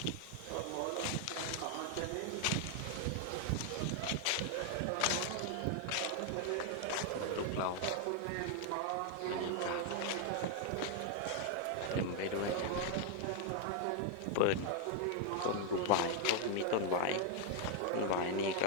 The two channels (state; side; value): different; both; correlation 0.00